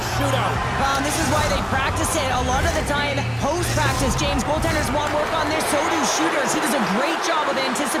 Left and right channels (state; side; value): identical; both; correlation 1.00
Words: shootout. This is why they practice it. A lot of the time, post-practice, James, goaltenders want work on this, so do shooters. He does a great job of